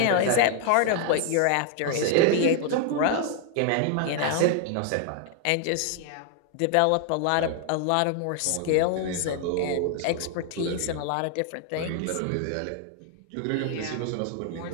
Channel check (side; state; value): both; different; correlation 0.00